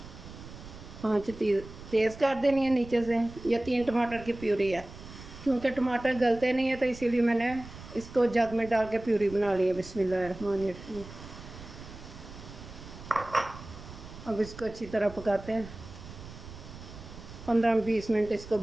आँच तेज़ कर देनी है नीचे से। ये 3 टमाटर की प्यूरी है। क्योंकि टमाटर गलते नहीं है तो इसीलिए मैंने इसको जग में डाल के प्यूरी बना ली है। बिस्मिल्लाहिर्रहमानिर्रहीम। अब इसको अच्छी तरह पकाते हैं। 15-20 मिनट इसको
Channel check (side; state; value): right; noise; rumble, 15 dB below the sound